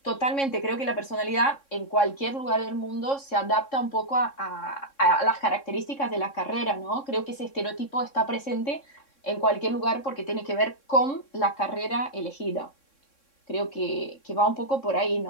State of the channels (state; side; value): late; right; 3.6 ms